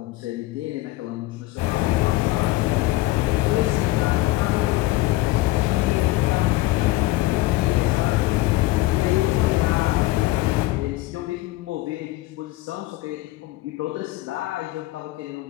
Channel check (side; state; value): right; quieter; 18.6 dB